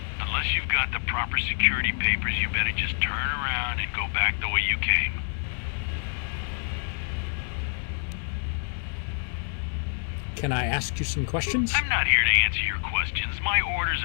Unless you've got the proper security papers, you better just turn around and go back the way you came. Can I ask you some questions? I'm not here to answer your questions. My orders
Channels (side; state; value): right; silent; 60 dB below the other